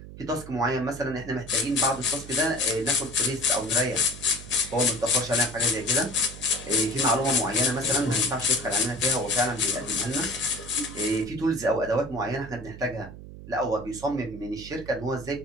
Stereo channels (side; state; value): right; noise; hum, 14 dB below the sound